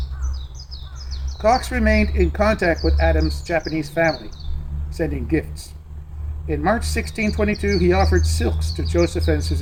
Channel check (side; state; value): both; identical; correlation 1.00